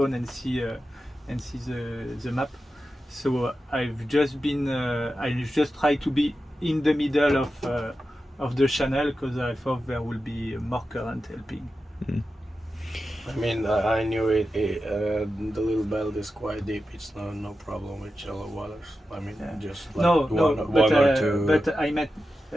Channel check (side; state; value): both; normal; correlation 0.91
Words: and see the map. So I've just tried to be in the middle of the channel, because I thought there will be more current helping. I mean, I knew the Little Belt is quite deep. It's no problem with shallow waters. I mean, just like one or two. But I meant